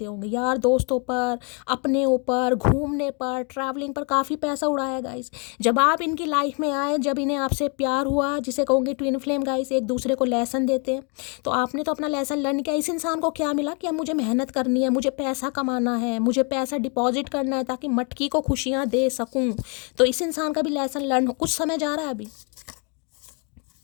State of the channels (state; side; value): quieter; right; 35.7 dB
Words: होंगे यार, दोस्तों पर, अपने ऊपर, घूमने पर, ट्रैवलिंग पर काफ़ी पैसा उड़ाया गाइस। जब आप इनकी लाइफ में आए, जब इन्हें आपसे प्यार हुआ, जिसे कहूँगी ट्विन फ्लेम गाइस, एक दूसरे को लेसन देते हैं, तो आपने तो अपना लेसन लर्न किया। इस इंसान को क्या मिला कि अब मुझे मेहनत करनी है, मुझे पैसा कमाना है, मुझे पैसा डिपॉजिट करना है ताकि मटकी को खुशियाँ दे सकूं। तो इस इंसान का भी लेसन लर्न हो, कुछ समय जा रहा है अभी।